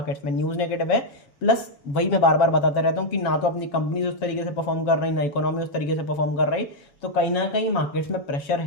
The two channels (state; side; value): late; right; 7.3 ms